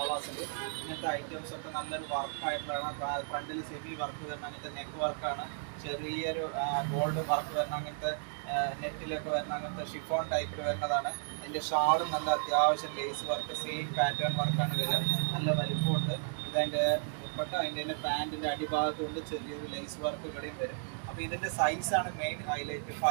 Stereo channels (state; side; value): silent; left; digital silence